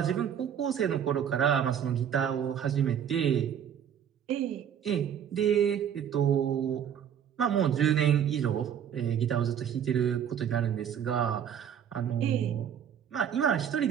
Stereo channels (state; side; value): quieter; left; 8.9 dB